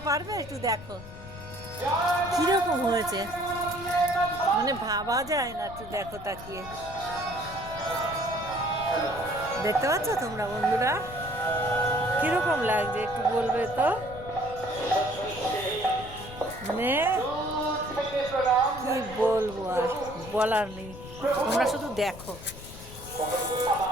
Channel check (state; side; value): noise; left; rumble, 14 dB below the sound